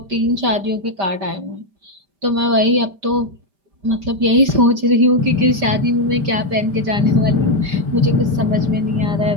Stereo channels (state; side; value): late; left; 5.1 ms